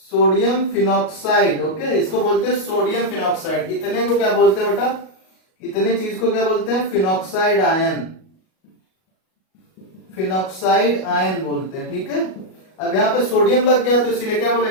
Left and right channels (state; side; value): late; right; 37 ms